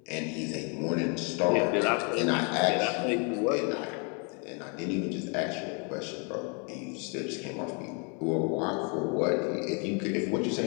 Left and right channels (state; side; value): quieter; right; 35.8 dB